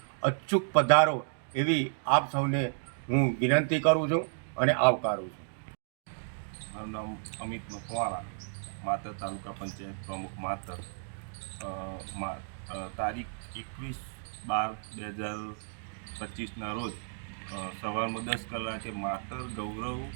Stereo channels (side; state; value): left; silent; digital silence